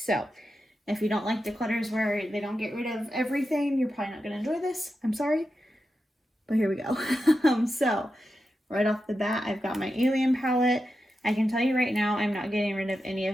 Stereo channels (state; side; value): normal; both; correlation 0.89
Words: if you don't like declutters where they don't get rid of everything, you're probably not going to enjoy this. I'm sorry, but here we go. So right off the bat, I've got my Alien palette. I can tell you right now, I'm not getting rid of any